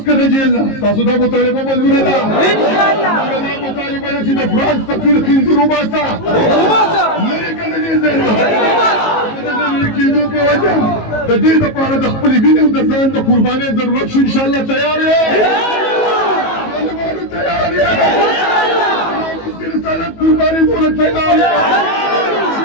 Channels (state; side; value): late; right; 19 ms